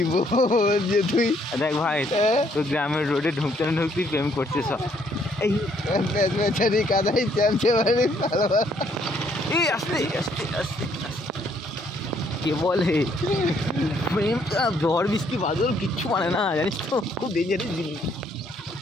যে তুই দেখ ভাই, তোর গ্রামের রোডে ঢুকতে না ঢুকতেই প্রেম করছে সব। এই বেচারি কাদাই চামছে বাড়ি ভালো। এই আস্তে আস্তে আস্তে কে বলে প্রেম ঝড় বৃষ্টি বাদল কিচ্ছু মানে না, জানিস তো, খুব ডেঞ্জারাস জিনিস।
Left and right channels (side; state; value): both; normal; correlation 0.67